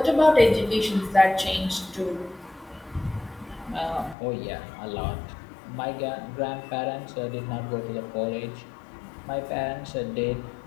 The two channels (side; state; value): right; drops out; at 4.2 s